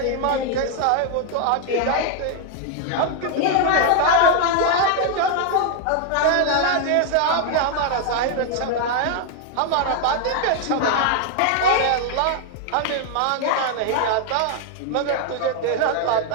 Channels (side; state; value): both; different; correlation 0.00